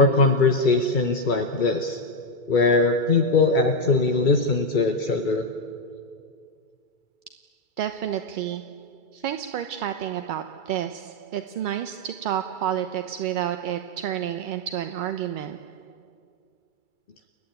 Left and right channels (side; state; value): right; late; 2.3 ms